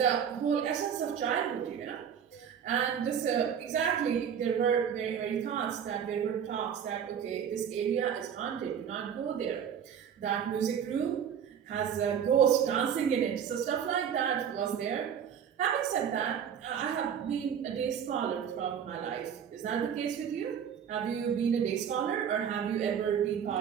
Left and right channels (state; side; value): quieter; left; 8.2 dB